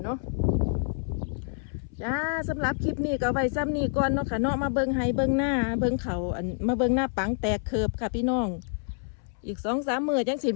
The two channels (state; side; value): silent; right; 60 dB below the other